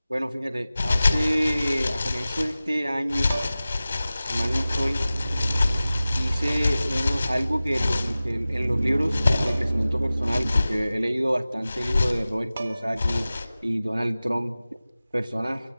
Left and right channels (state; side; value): inverted; both; correlation -0.96